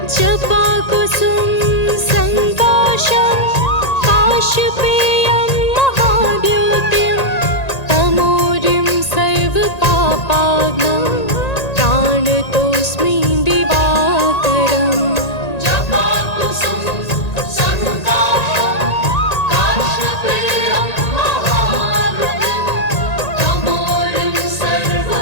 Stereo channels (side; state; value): right; late; 1.9 ms